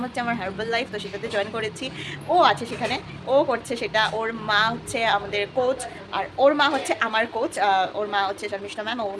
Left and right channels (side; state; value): both; identical; correlation 1.00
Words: হচ্ছে আমার হার্বাল লাইফ, তো সেটাতে জয়েন করেছি। ও আছে সেখানে, ও করছে সেটা। ওর মা হচ্ছে আমাদের কোচ, আর ওর মা হচ্ছে আমার কোচ। ওর মা হচ্ছে শর্মিষ্ঠা ম্যাম,